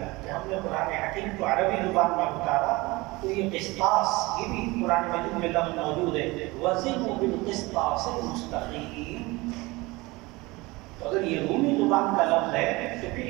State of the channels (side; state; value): left; quieter; 22.6 dB